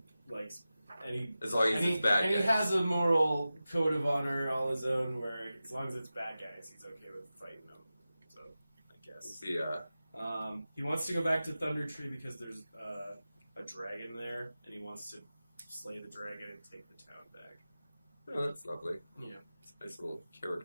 likes... as long as it's bad guys. And he has a moral code of honor all his own where as long as it's bad guys, he's okay with fighting them. So, I guess. Yeah. He wants to go back to Thunder Tree because there's a dragon there, and he wants to slay the dragon and take the town back. Oh, that's lovely. Yeah. It's a nice little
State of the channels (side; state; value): both; inverted; correlation -0.94